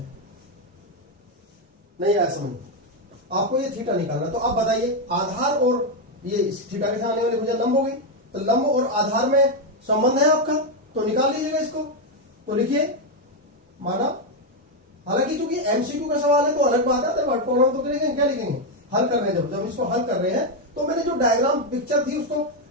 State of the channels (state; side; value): normal; both; correlation 0.04